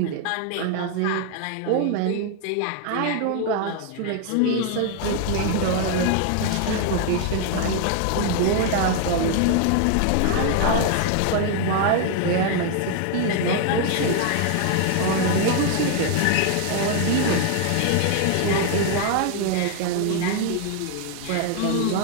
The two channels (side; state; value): both; different; correlation 0.00